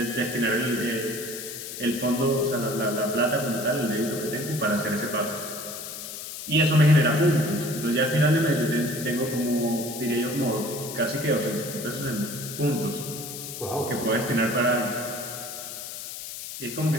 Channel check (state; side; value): noise; left; hiss, 9 dB below the sound